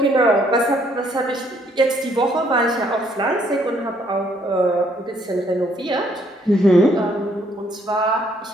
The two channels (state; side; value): normal; both; correlation 0.67